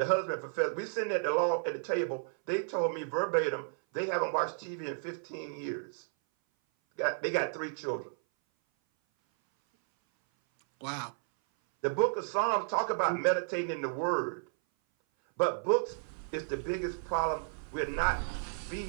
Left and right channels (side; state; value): left; silent; 56 dB below the other